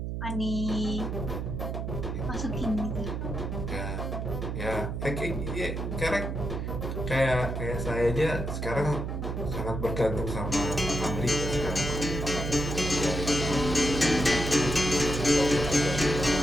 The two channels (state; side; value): noise; right; hum, 4 dB below the sound